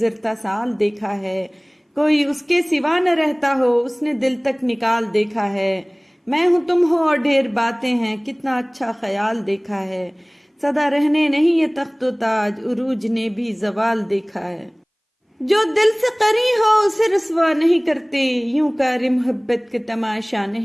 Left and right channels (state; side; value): identical; both; correlation 1.00